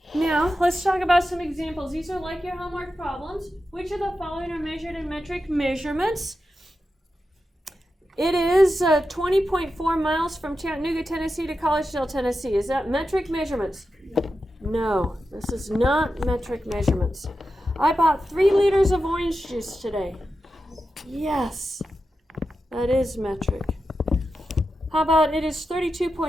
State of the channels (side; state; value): both; normal; correlation 0.90